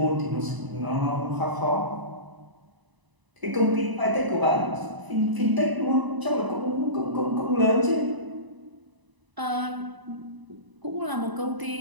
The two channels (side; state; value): left; late; 1.0 ms